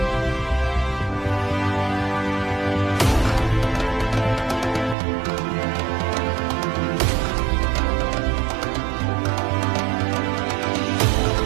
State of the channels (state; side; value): drops out; left; at 5.0 s